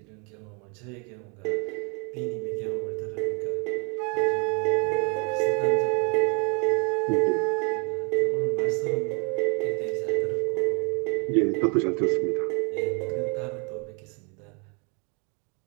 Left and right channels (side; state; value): left; quieter; 34.2 dB